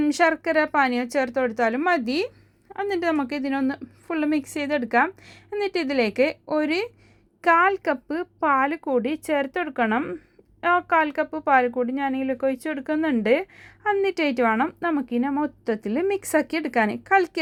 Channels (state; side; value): identical; both; correlation 1.00